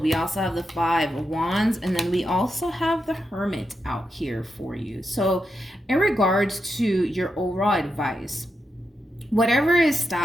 we also have the Five of Wands, and then we also have the Hermit out here for you. So in regards to your overall advice, whatever is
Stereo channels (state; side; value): normal; both; correlation 0.86